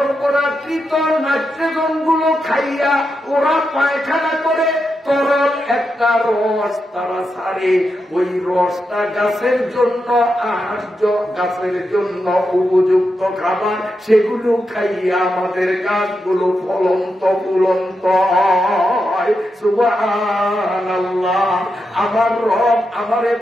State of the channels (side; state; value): both; normal; correlation 0.86